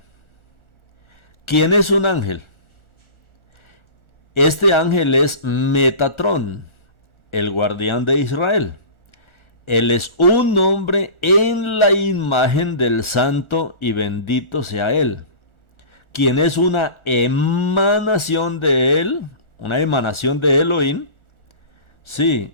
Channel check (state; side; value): late; right; 1.4 ms